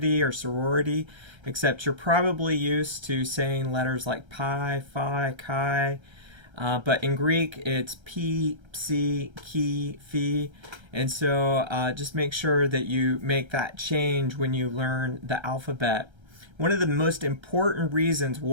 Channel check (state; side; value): late; left; 1.3 ms